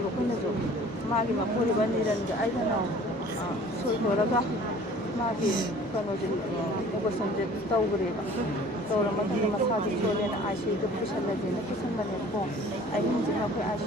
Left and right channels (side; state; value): both; normal; correlation 0.49